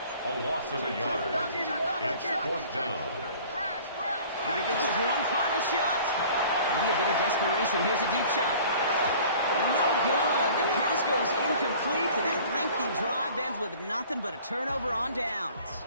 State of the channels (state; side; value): inverted; both; correlation -0.48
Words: A loss of a yard. It's 4th down. Here goes one final shot. Maybe a bit of desperation. Here's a deep shot. No good. The pass goes incomplete, and that lengthy drive ends with nothing but a turnover on downs.